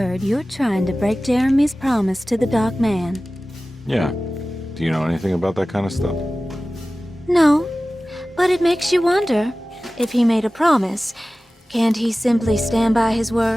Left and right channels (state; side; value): normal; both; correlation 0.97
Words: you're trying to break Jeremy's promise to the Dark Man. Yeah. Do you know anything about that kind of stuff? No, but it makes you wonder. If he made a promise, can't he simply stand by his